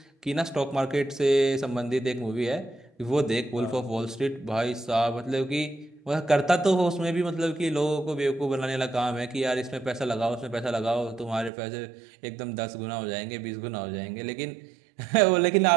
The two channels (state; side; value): drops out; left; at 11.5 s